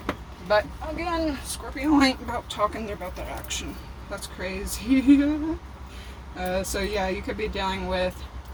But again, Scorpio ain't about talking, they're about the action. That's crazy. So yeah, you could be dealing with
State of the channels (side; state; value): both; identical; correlation 1.00